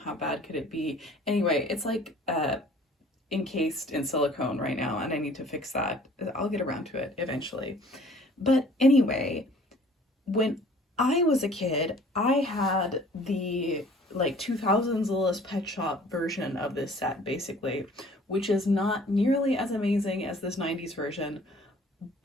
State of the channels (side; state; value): both; normal; correlation 0.52